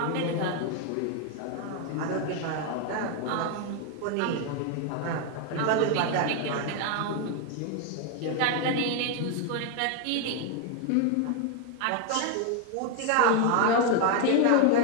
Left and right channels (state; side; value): different; both; correlation 0.01